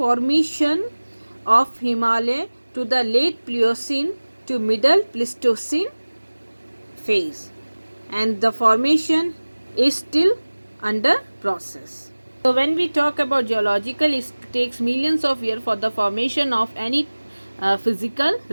of Himalaya to the late Pliocene to middle Pleistocene phase, and the formation is still under process. So when we talk about geological, it takes millions of years for the formation of any physical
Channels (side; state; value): both; inverted; correlation -1.00